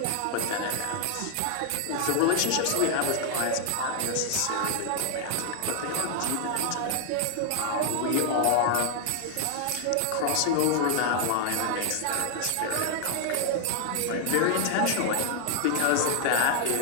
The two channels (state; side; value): different; both; correlation 0.00